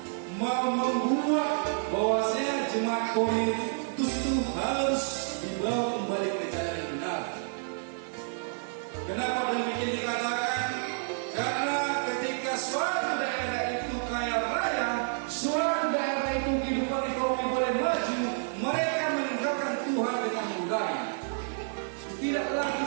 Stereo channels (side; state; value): left; silent; digital silence